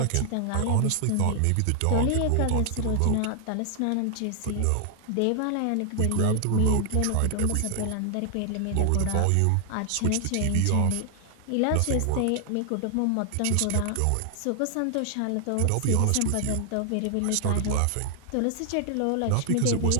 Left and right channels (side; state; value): both; different; correlation 0.00